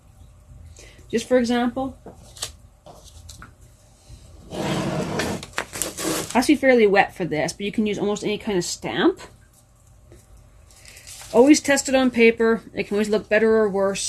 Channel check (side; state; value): both; identical; correlation 1.00